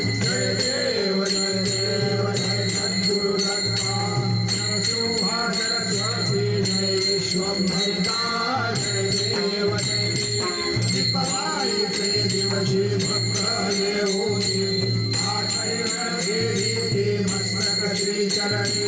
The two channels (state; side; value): identical; both; correlation 1.00